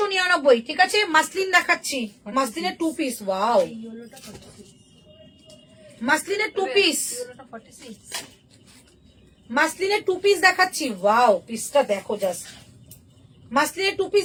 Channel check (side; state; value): both; identical; correlation 1.00